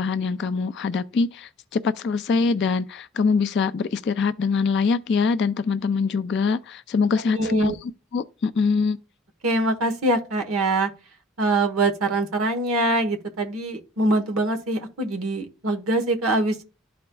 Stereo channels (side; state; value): both; normal; correlation 0.52